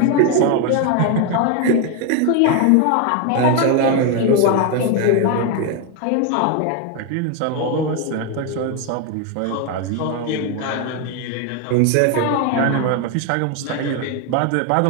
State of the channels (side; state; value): both; different; correlation 0.01